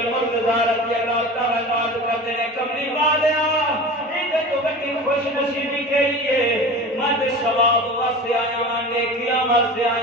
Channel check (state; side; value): normal; both; correlation 0.34